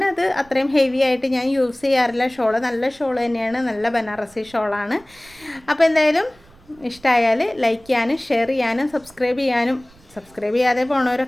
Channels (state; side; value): noise; right; rumble, 27 dB below the sound